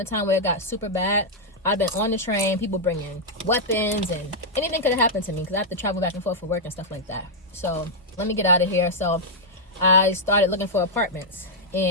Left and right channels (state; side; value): normal; both; correlation -0.05